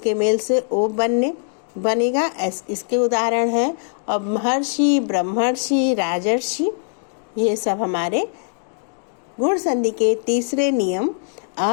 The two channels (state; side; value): silent; right; 65 dB below the other